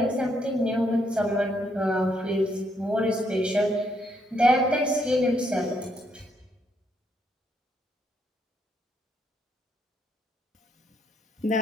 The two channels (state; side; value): normal; both; correlation 0.74